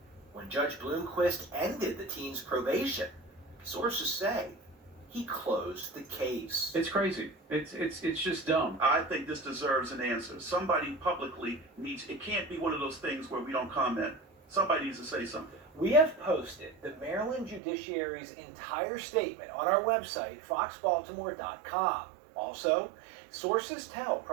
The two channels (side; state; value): left; drops out; at 17.6 s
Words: When Judge Bloomquist ended the teen's probation, sources say he closed the case. It's crazy. It's just dumb. I think this deserves an answer. Somebody publicly needs, it can't be one of those things where we don't comment. Somebody needs to say something. We have posted the Maryland Judiciary's entire statement on our website, foxbaltimore.com. Also, sources tell